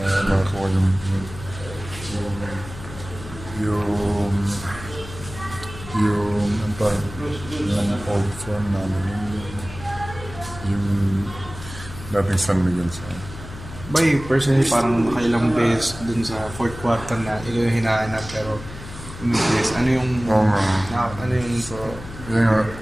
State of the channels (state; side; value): noise; left; hum, 13 dB below the sound